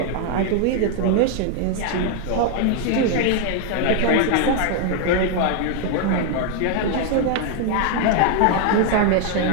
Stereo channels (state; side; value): different; both; correlation 0.00